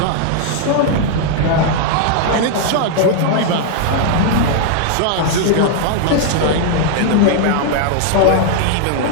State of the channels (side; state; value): both; different; correlation 0.00